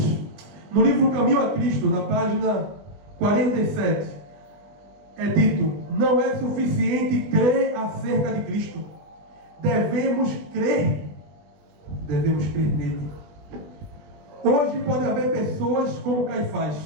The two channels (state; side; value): late; left; 21 ms